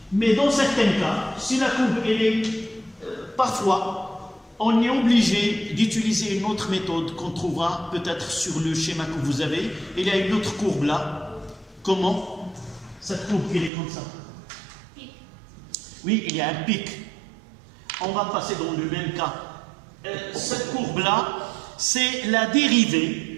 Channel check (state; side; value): drops out; left; at 13.7 s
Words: Mais dans certains cas, si la courbe elle est parfois, on est obligé d'utiliser une autre méthode qu'on trouvera peut-être sur le schéma que vous avez. Il y a une autre courbe là. Comment? Cette courbe qui est comme ça. Oui, il y a un pic. On va passer dans le même cas. Cette courbe là, c'est la